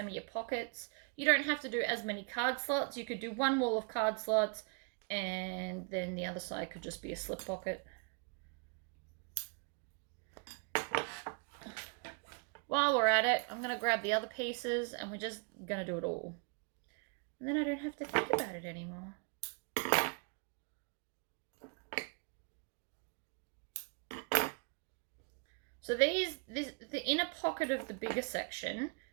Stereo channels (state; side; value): quieter; left; 36.3 dB